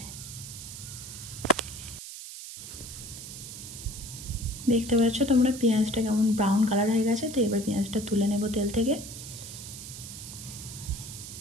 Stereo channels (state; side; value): noise; right; hiss, 11 dB below the sound